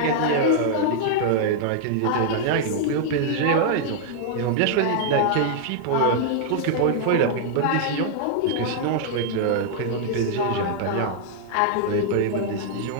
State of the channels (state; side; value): different; both; correlation -0.01